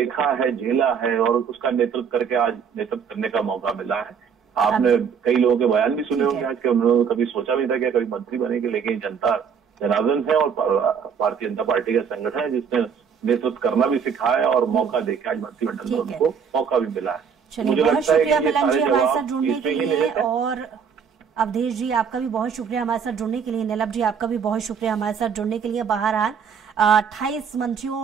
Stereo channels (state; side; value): quieter; left; 6.8 dB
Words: है, झेला है और उसका नेतृत्व करके आज नेतृत्व करने का मौका मिला है। आपने कई लोगों के बयान भी सुने होंगे आज के, उन्होंने कभी सोचा नहीं था कि कभी मंत्री बनेंगे, लेकिन जनता जनार्दन है और भारतीय जनता पार्टी का संगठन है जिसने नेतृत्व करना भी सिखाया और मौका देके आज मंत्रिमंडल में उनको मौका भी मिला है। मुझे बहुत शुक्रिया मिलन जी हमारे साथ जुड़ने के लिए, और अवधेश जी आपका भी बहुत शुक्रिया हमारे साथ जुड़ने के लिए। नीलम जी आपका भी बहुत शुक्रिया हमारे साथ जुड़ने के लिए। बहरहाल 28